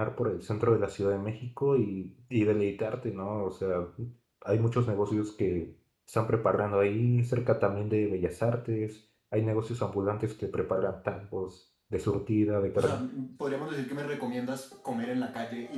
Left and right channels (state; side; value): identical; both; correlation 1.00